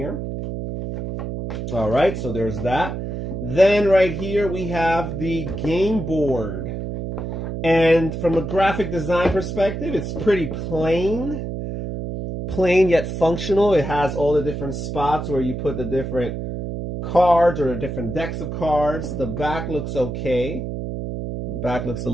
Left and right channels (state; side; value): noise; right; hum, 5 dB below the sound